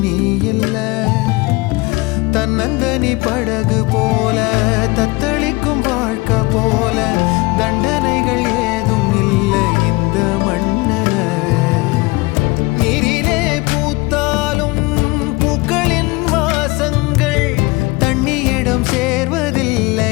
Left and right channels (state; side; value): quieter; right; 23.7 dB